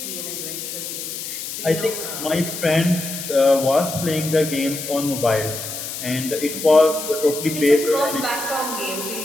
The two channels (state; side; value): noise; left; hiss, 7 dB below the sound